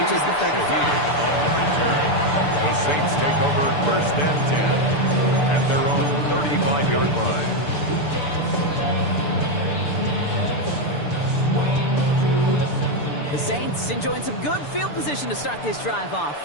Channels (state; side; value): late; right; 6.8 ms